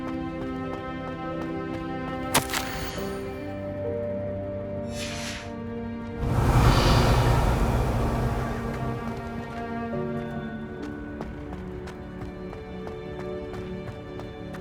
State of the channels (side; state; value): both; identical; correlation 1.00